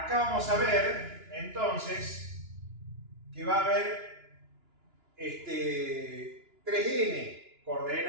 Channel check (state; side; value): late; left; 2.9 ms